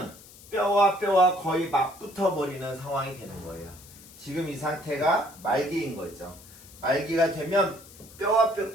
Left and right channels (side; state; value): left; noise; hiss, 20 dB below the sound